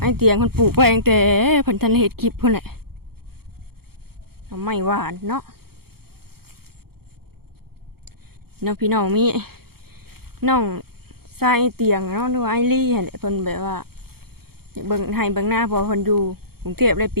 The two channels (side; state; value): left; late; 0.95 ms